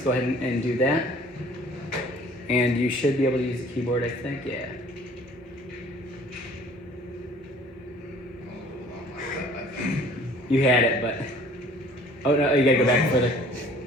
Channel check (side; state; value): both; normal; correlation 0.52